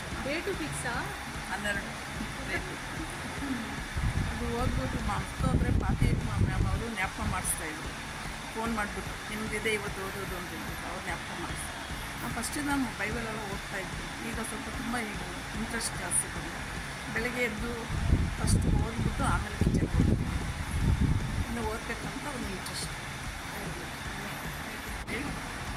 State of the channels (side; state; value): both; identical; correlation 1.00